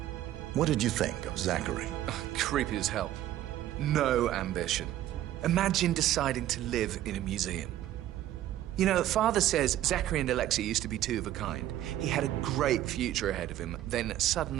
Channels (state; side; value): quieter; left; 13.1 dB